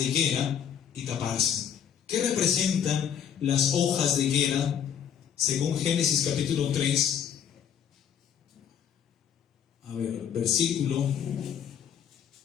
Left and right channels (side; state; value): right; quieter; 8.7 dB